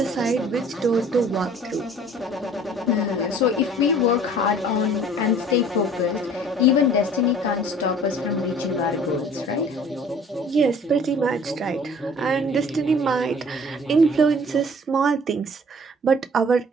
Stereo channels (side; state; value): both; normal; correlation 0.51